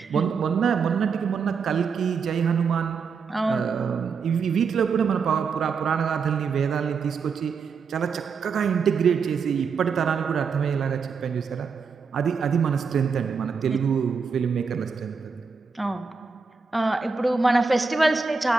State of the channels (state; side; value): quieter; left; 5.4 dB